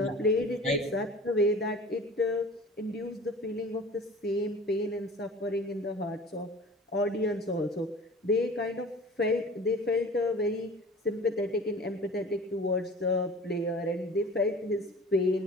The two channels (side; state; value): both; normal; correlation 0.42